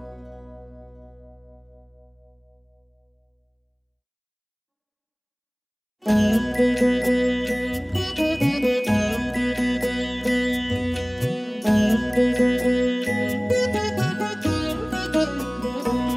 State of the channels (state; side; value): identical; both; correlation 1.00